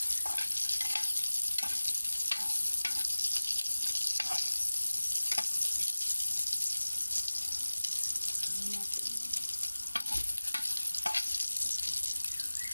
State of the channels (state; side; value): inverted; both; correlation -1.00